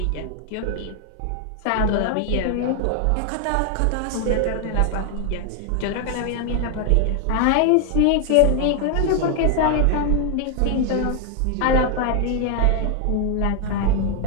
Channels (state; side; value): different; both; correlation 0.00